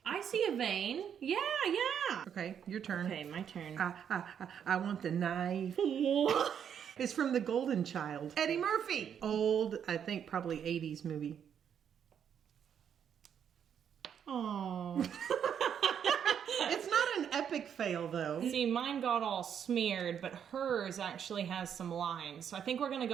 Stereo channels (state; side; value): quieter; left; 8.4 dB